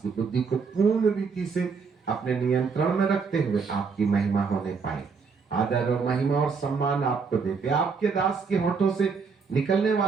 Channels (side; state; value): left; quieter; 5.3 dB